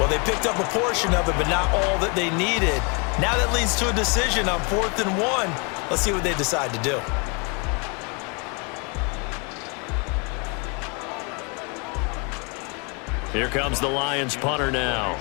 they picked up a portion of it, but not all that they needed. Now that leads to a decision on 4th and 1. Let's see what they decide to do. Here comes the Lions punter now,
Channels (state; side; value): quieter; right; 33.3 dB